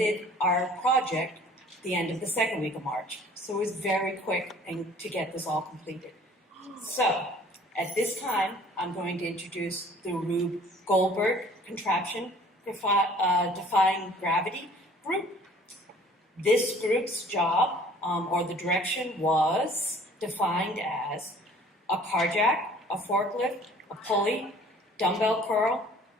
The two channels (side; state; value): both; normal; correlation 0.52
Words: our project the end of the second week of March. So it was very quick to get this all completed. So at this time, I'm going to introduce the Rube Goldberg Contraption Defying Gravity group. This group's job, or the direction, was defined as a car jack, a forklift, a pulley, dumbbell curl.